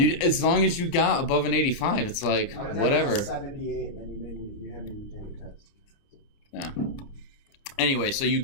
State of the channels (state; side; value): late; right; 29 ms